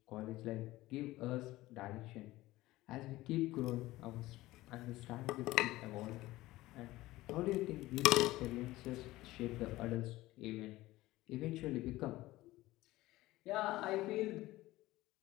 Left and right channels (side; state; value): right; quieter; 17.7 dB